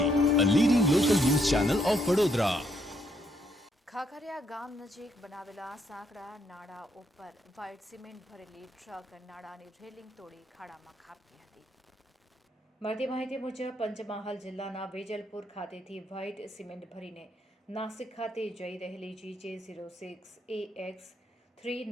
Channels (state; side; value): normal; both; correlation 0.73